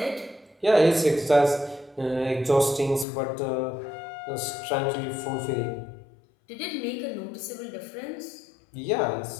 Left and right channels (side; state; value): right; drops out; at 3.1 s